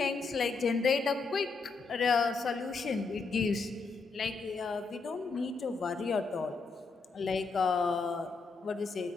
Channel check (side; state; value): right; quieter; 4.3 dB